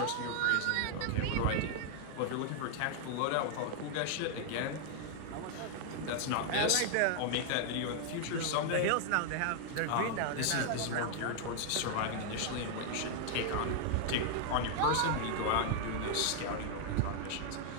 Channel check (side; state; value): both; different; correlation -0.01